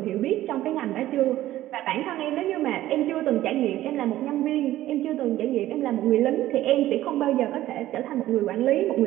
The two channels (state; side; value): quieter; left; 14.5 dB